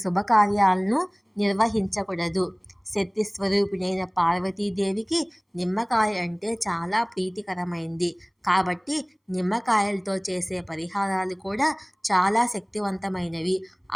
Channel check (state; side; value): identical; both; correlation 1.00